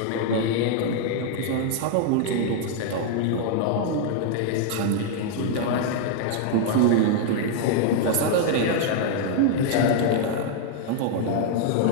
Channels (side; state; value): both; different; correlation 0.00